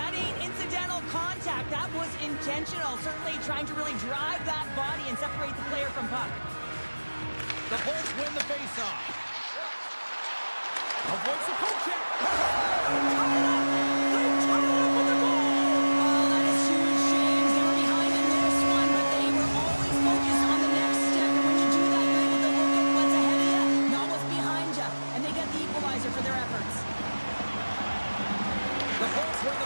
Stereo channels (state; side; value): inverted; both; correlation -1.00